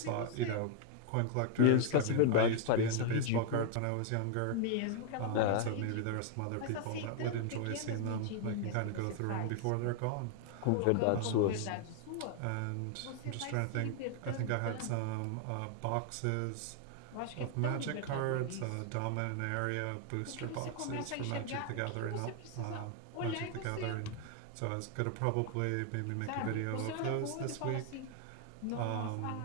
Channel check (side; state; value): both; different; correlation 0.00